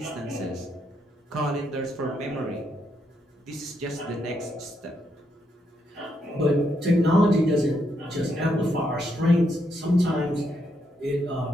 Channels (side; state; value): both; normal; correlation 0.78